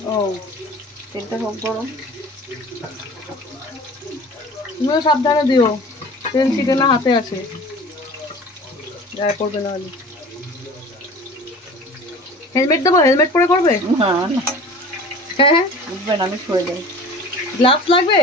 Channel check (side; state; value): both; normal; correlation 0.41